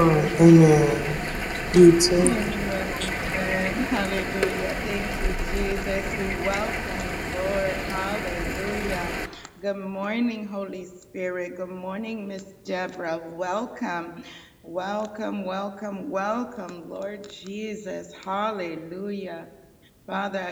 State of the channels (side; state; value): both; identical; correlation 1.00